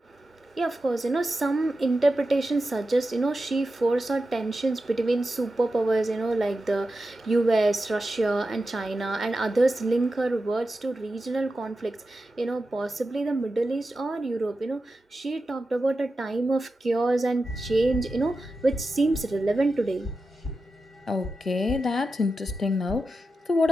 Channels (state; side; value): normal; both; correlation 0.91